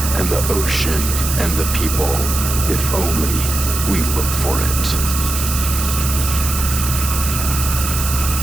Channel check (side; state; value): right; noise; hiss, 4 dB below the sound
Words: and the ocean, and the people, if only we look for it.